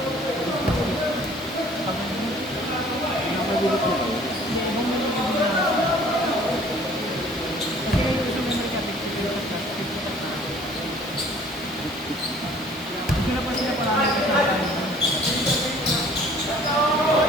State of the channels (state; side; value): normal; both; correlation 0.53